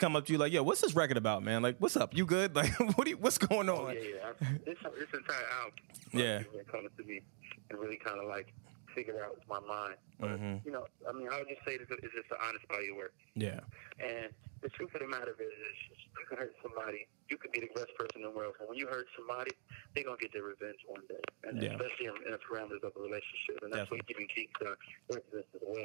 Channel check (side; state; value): left; silent; digital silence